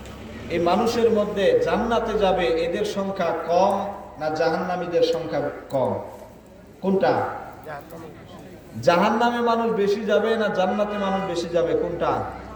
এই মানুষের মধ্যে জান্নাতে যাবে এদের সংখ্যা কম না জাহান্নামীদের সংখ্যা কম? কোনটা? জাহান্নামে মানুষ বেশি যাবে না জান্নাতে মানুষ বেশি যাবে? কোনটা?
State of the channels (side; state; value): both; identical; correlation 1.00